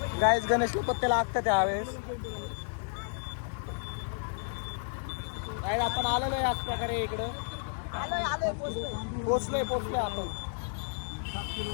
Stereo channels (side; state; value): right; silent; digital silence